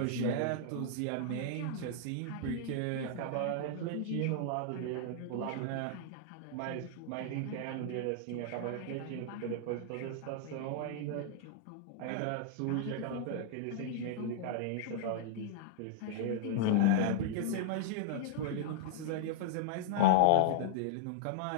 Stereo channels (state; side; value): different; both; correlation -0.01